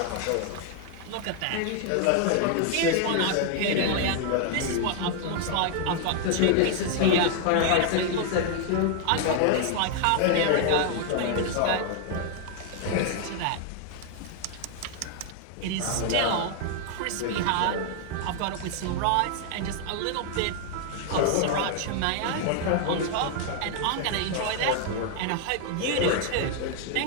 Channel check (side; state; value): both; different; correlation 0.00